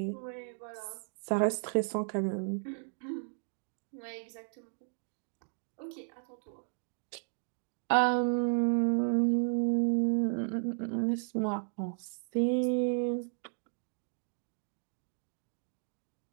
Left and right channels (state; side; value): silent; left; digital silence